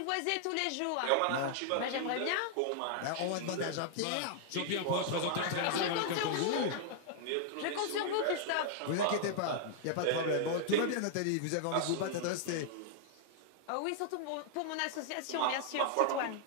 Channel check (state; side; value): different; both; correlation -0.01